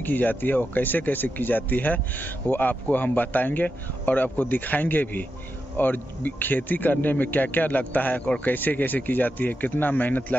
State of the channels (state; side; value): normal; both; correlation 0.88